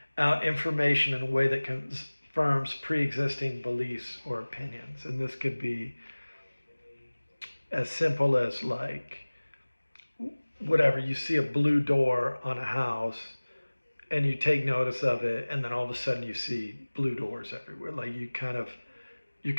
out information in a way that confirms pre-existing beliefs or opinions. And this could be as simple as like whatever, you see a blue door on a house and you take notice of it, and then all of a sudden you see blue doors everywhere. Like you're kind of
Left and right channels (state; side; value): inverted; both; correlation -1.00